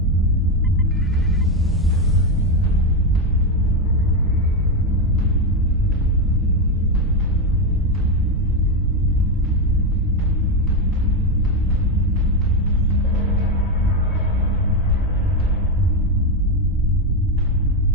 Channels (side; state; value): both; normal; correlation 0.09